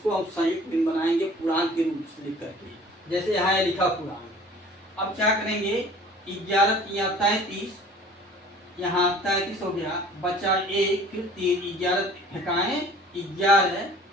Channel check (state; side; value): normal; both; correlation 0.48